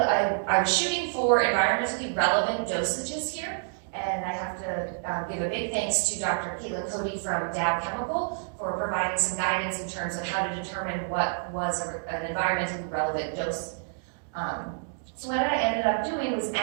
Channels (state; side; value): silent; left; digital silence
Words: I was shooting for environmentally relevant dosages here, and I have to give a big thanks to Dr. Caitlin Cody from Dow Chemical for providing some guidance in terms of how to determine what was an environmentally relevant dose. So what I ended up doing was